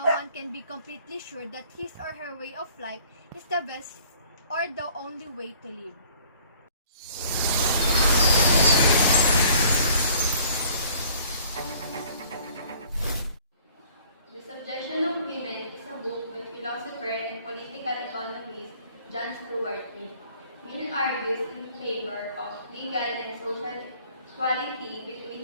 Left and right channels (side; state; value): both; inverted; correlation -0.55